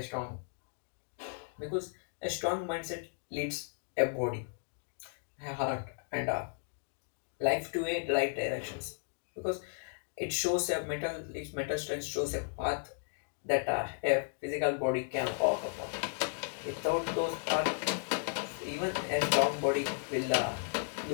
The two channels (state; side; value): silent; right; digital silence